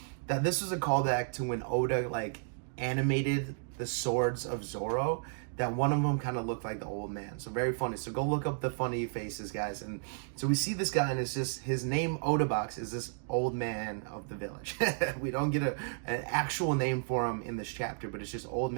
that this was a callback to when Oda like animated the swords of Zorro, that one of them kind of looked like the old man. So very funny. So go look up the funny faces, guys. And so we see this guy, and it's just his name, Oda Box, is this old man of the village. We don't get an actual name for him in this chapter, but it's just old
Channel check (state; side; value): silent; left; digital silence